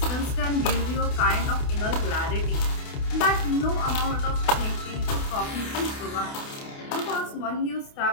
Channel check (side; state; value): right; late; 28 ms